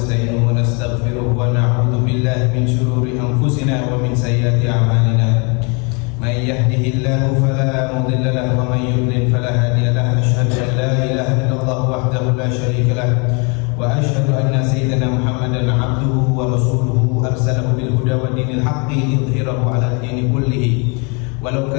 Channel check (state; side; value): quieter; right; 32.9 dB